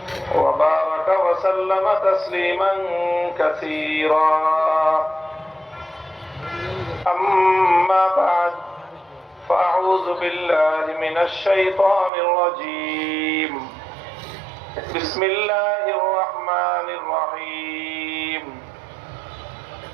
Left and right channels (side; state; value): left; drops out; at 12.1 s